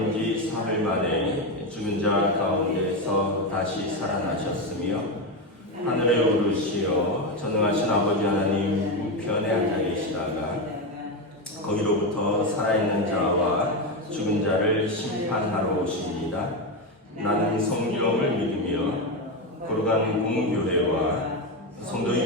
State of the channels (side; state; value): both; normal; correlation 0.12